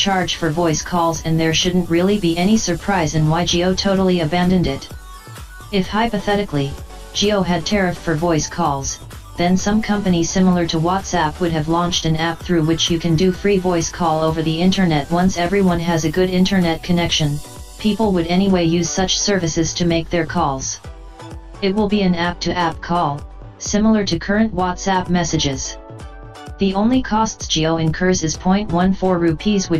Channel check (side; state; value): both; identical; correlation 1.00